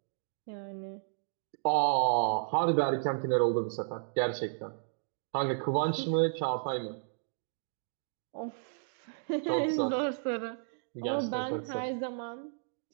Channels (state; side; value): silent; left; digital silence